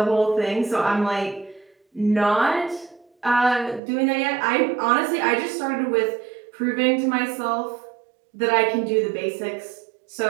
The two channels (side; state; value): left; drops out; at 3.8 s